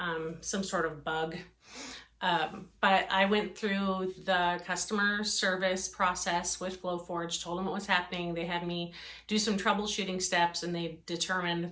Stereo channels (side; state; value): both; identical; correlation 1.00